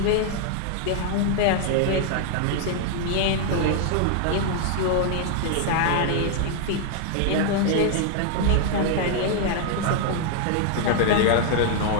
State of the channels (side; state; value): both; different; correlation 0.00